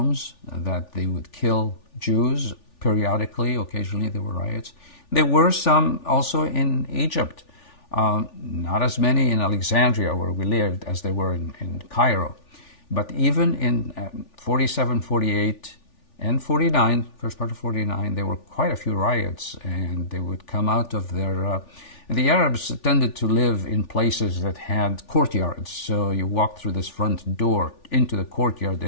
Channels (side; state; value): right; late; 3.4 ms